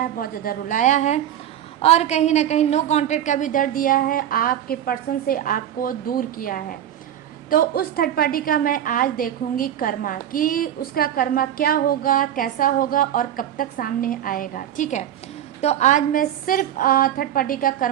है, बहुत ज़्यादा रुलाया है, और कहीं ना कहीं नो कॉन्टेक्ट का भी दर्द दिया है, आपके पर्सन से आपको दूर किया है। तो उस थर्ड पार्टी का मैं आज देखूंगी कर्मा, कि उसका कर्मा क्या होगा, कैसा होगा और कब तक सामने आएगा। ठीक है, तो आज मैं सिर्फ थर्ड पार्टी का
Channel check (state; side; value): quieter; left; 10.9 dB